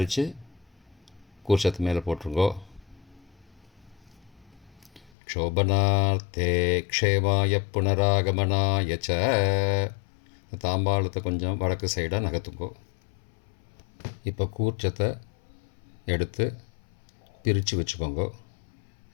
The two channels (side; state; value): right; drops out; at 5.1 s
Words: கூர்ச்சத்து மேலே போட்டுருங்கோ. க்ஷோபனார்த்தே க்ஷேமாய புனராகமனாய ச. தாம்பாளத்தை கொஞ்சம் வடக்கு சைடாக நகர்த்துங்கோ. இப்போ கூர்ச்சத்தை எடுத்து பிரித்து வச்சுக்கோங்க.